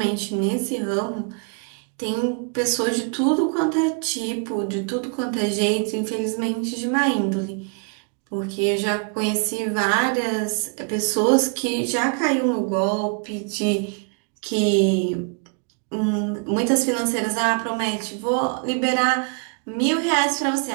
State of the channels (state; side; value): quieter; left; 39.1 dB